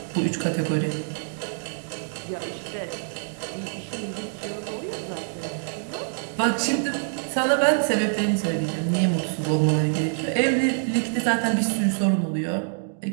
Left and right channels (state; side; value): silent; left; digital silence